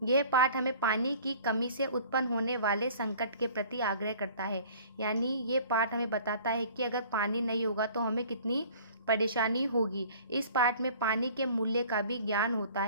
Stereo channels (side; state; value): both; inverted; correlation -0.49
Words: यह पाठ हमें पानी की कमी से उत्पन्न होने वाले संकट के प्रति आग्रह करता है। यानी ये पाठ हमें बताता है कि अगर पानी नहीं होगा तो हमें कितनी परेशानी होगी। इस पाठ में पानी के मूल्य का भी ज्ञान होता